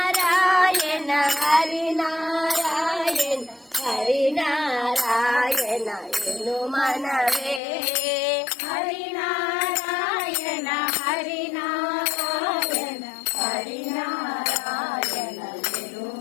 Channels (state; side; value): drops out; right; at 7.6 s